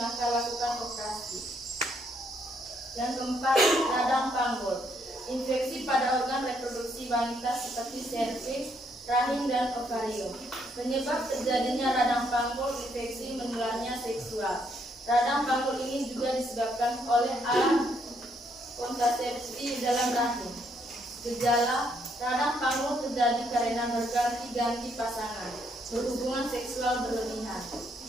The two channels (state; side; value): normal; both; correlation 0.73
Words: lakukan operasi. Yang keempat, radang panggul. Infeksi pada organ reproduksi wanita seperti serviks, rahim, dan ovarium. Penyebab terjadinya radang panggul infeksi menularnya seksual. Radang panggul ini juga disebabkan oleh alat kontrasepsi dalam rahim. Gejala radang panggul terjadi karena berganti-ganti pasangan, berhubungan seksual berlebihan.